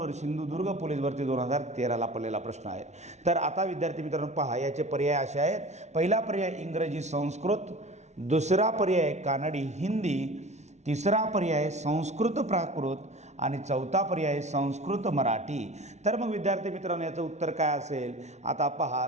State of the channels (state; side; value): late; left; 0.32 ms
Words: सिंधुदुर्ग पोलीस भरती 2013ला पडलेला प्रश्न आहे। तर आता विद्यार्थी मित्रांनो पहा, याचे पर्याय असे आहेत। पहिला पर्याय इंग्रजी संस्कृत, दुसरा पर्याय कानडी हिंदी, तिसरा पर्याय संस्कृत प्राकृत आणि चौथा पर्याय संस्कृत मराठी। तर मग विद्यार्थी मित्रांनो, याचं उत्तर काय असेल? आता पहा,